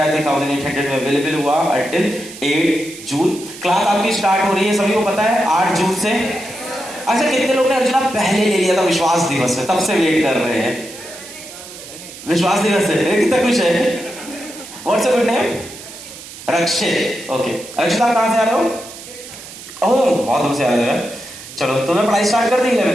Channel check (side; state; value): right; noise; hiss, 15 dB below the sound